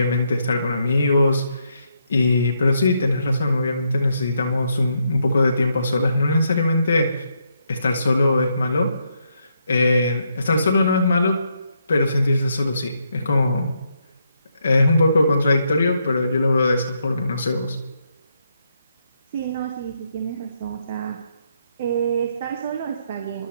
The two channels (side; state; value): both; inverted; correlation -0.78